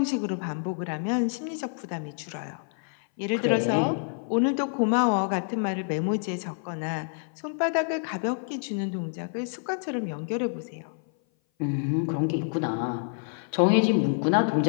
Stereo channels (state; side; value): silent; right; 57 dB below the other